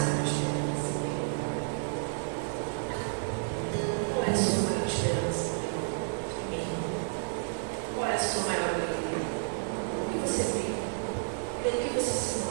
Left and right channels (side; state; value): left; silent; digital silence